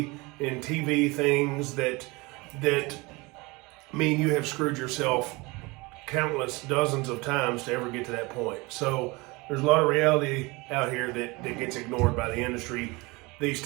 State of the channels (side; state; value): left; quieter; 24.6 dB